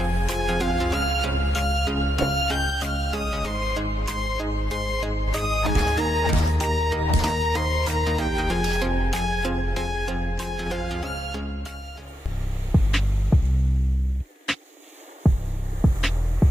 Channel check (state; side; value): normal; both; correlation 0.85